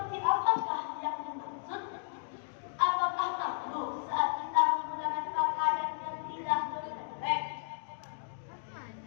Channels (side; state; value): right; silent; digital silence